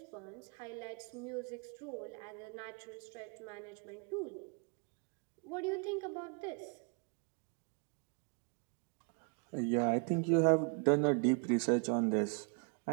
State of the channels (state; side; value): quieter; left; 37.7 dB